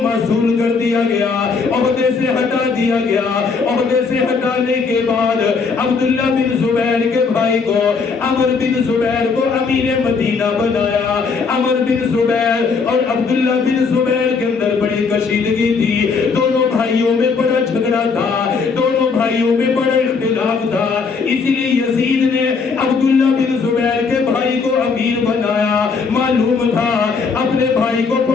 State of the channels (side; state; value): right; quieter; 5.0 dB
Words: معزول کر دیا گیا، عہدے سے ہٹا دیا گیا۔ عہدے سے ہٹانے کے بعد عبداللہ بن زبیر کے بھائی کو عمر بن زبیر کو امیر مدینہ بنایا۔ عمر بن زبیر اور عبداللہ بن زبیر کے اندر بڑی کشیدگی تھی، دونوں بھائیوں میں بڑا جھگڑا تھا، دونوں بھائیوں میں بڑا اختلاف تھا۔ اسی لیے یزید نے عبداللہ بن زبیر کے بھائی کو امیر بنایا، معلوم تھا اپنے بھائی کو